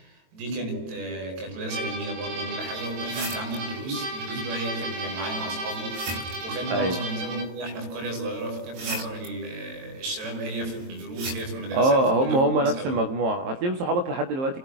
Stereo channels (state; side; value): late; left; 23 ms